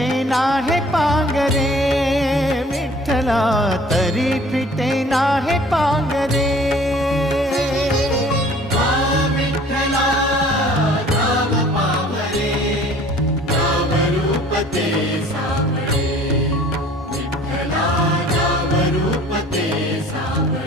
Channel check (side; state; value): both; normal; correlation 0.51